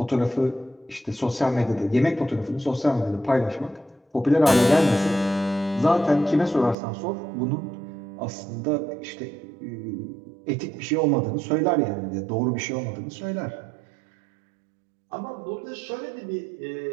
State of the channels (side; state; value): left; drops out; at 6.8 s